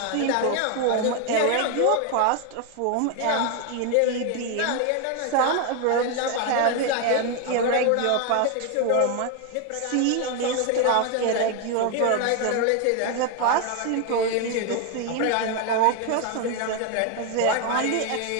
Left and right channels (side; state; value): both; different; correlation 0.01